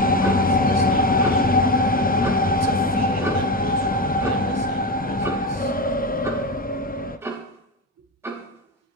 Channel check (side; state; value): both; normal; correlation 0.18